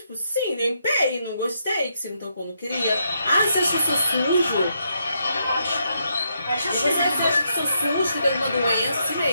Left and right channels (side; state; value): both; inverted; correlation -0.78